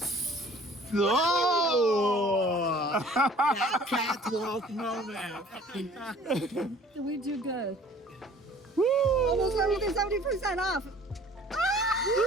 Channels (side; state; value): both; normal; correlation 0.51